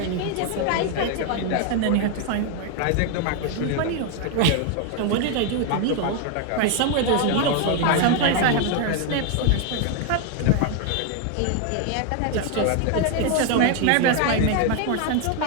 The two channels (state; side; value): different; both; correlation 0.01